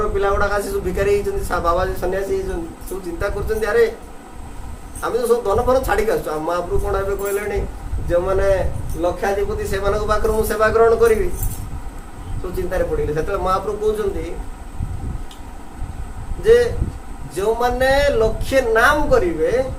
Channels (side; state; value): both; identical; correlation 1.00